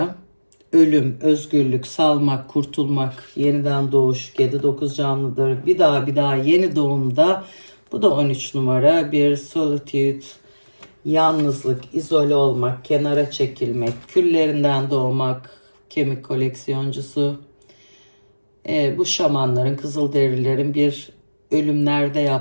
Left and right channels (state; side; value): inverted; both; correlation -1.00